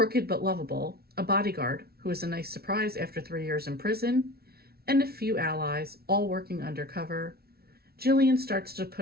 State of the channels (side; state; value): left; late; 0.45 ms